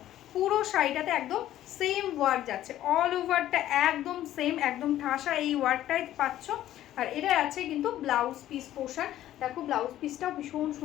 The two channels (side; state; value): right; quieter; 13.0 dB